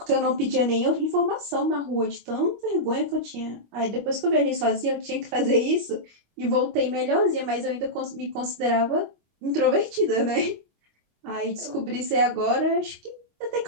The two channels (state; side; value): late; left; 25 ms